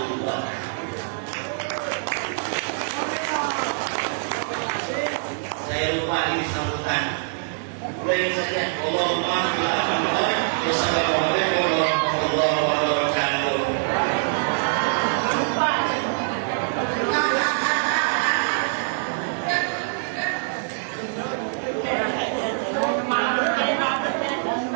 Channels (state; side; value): silent; left; digital silence